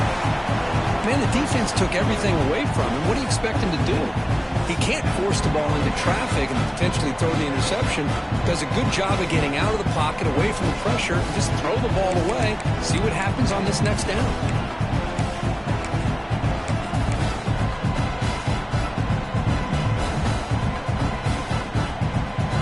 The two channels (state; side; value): identical; both; correlation 1.00